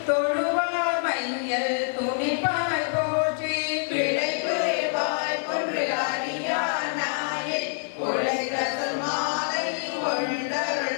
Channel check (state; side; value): silent; right; 61 dB below the other